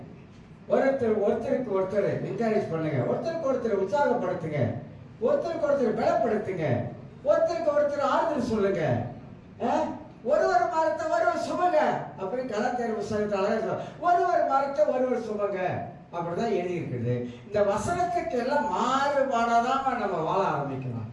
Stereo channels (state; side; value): identical; both; correlation 1.00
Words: ஒருத்தருக்கு ஒருத்தர் என்கரேஜ் பண்ணுங்க, ஒருத்தருக்கு ஒருத்தர் உற்சாகப்படுத்துங்க, ஒருத்தருக்கு ஒருத்தர் பலப்படுத்துங்க, ஒருத்தருக்கு ஒருத்தர் ஆறுதல் சொல்லுங்க. ஒருவர் மரத்தை ஒருவர் சுமங்க அப்படின்னு கலாச்சார புத்தகத்தால ஒருவர் மரத்தை ஒருவர் சுமங்க அப்படிதான் எழுதி இருக்குது. இந்த வசனத்துக்கு எல்லாம் மாறுபாடாதான் நம்ம வாழ ஆரம்பிக்கலாம்.